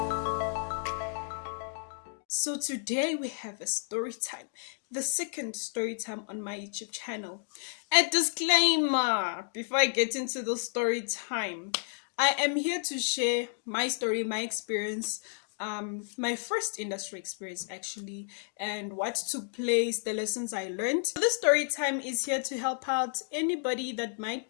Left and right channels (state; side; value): silent; right; digital silence